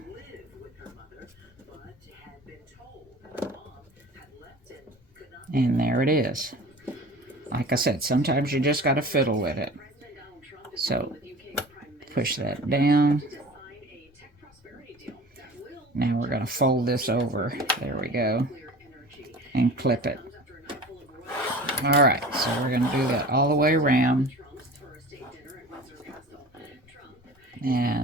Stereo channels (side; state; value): both; normal; correlation 0.40